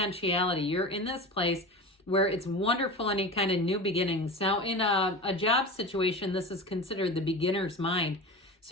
You're in this place where it's wonderful, any kind of new beginnings. Now, in a job situation, this is considered the beginner's mind.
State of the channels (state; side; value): normal; both; correlation 0.29